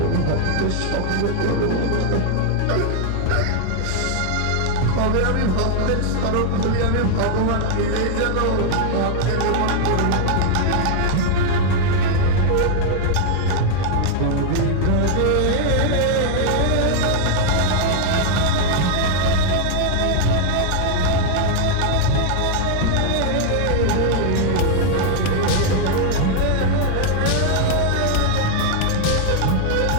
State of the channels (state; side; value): different; both; correlation 0.00